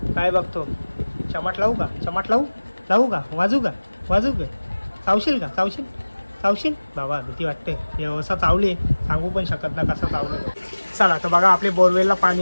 काय बघतो. चमाट लावू का, चमाट लावू का, वाजू का, चावशील का, चावशील बाबा. भीती वाटते हे असं चावले, सांगू पण शकत ना कसं चावलं. चला तर बघा आपले बोरवेलला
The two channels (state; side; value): inverted; both; correlation -1.00